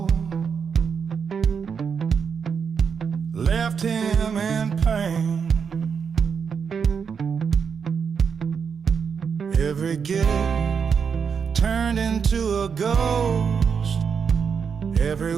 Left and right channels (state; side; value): quieter; left; 6.4 dB